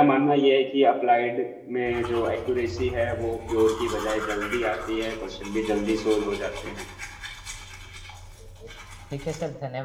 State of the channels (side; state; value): both; identical; correlation 1.00